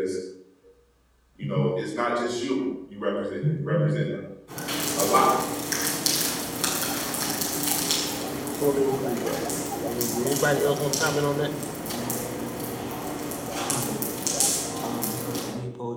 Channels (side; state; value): both; identical; correlation 1.00